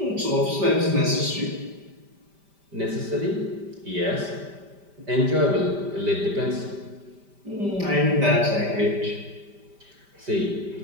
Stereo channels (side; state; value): left; late; 5.1 ms